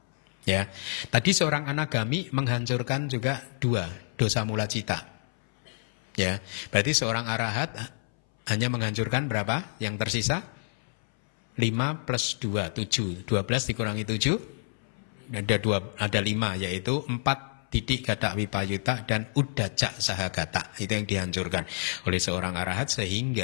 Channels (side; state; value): right; silent; 59 dB below the other